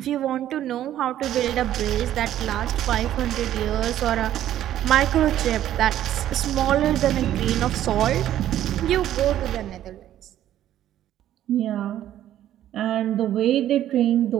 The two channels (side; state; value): left; quieter; 12.1 dB